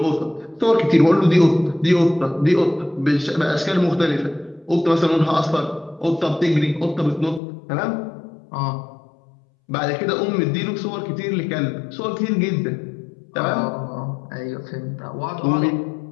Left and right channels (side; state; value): right; drops out; at 7.4 s